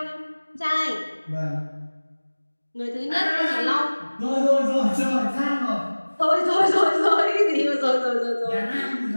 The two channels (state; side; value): inverted; both; correlation -1.00